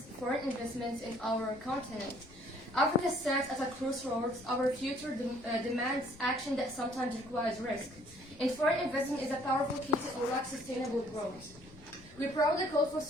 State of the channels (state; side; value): noise; left; rumble, 22 dB below the sound